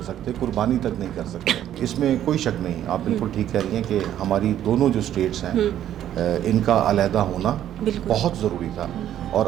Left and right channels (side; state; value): left; quieter; 11.3 dB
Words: سکتے, قربانی تک نہیں کر سکتے. اس میں کوئی شک نہیں, آپ بالکل ٹھیک کہہ رہی ہیں کہ ہماری دونوں جو اسٹیٹس ہیں ان کا علیحدہ ہونا بہت ضروری تھا. اور